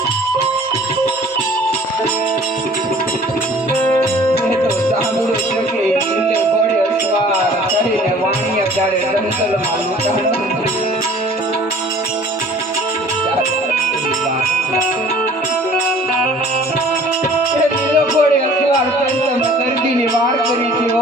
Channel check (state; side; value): normal; both; correlation 0.50